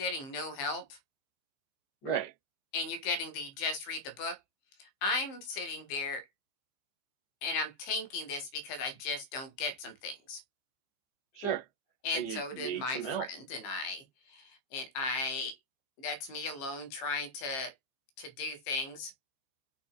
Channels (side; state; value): right; late; 14 ms